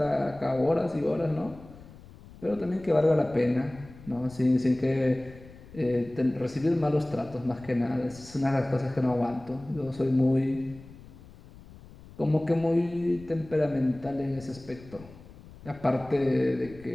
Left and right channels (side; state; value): left; noise; rumble, 20 dB below the sound